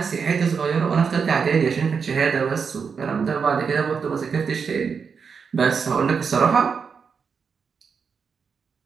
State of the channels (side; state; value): left; quieter; 5.9 dB